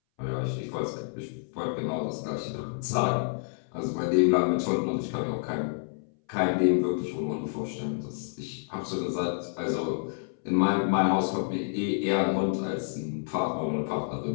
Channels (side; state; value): right; silent; 59 dB below the other